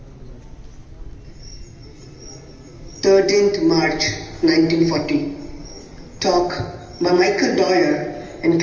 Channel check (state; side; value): identical; both; correlation 1.00